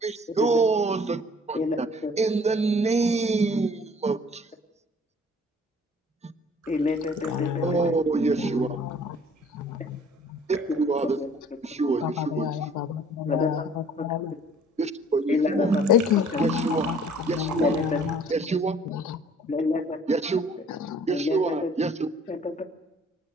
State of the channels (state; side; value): normal; both; correlation 0.54